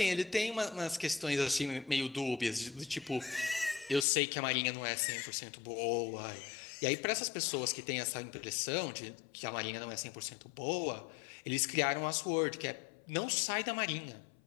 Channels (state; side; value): drops out; right; at 4.0 s